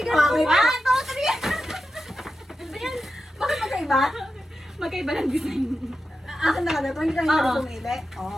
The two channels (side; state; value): both; normal; correlation 0.90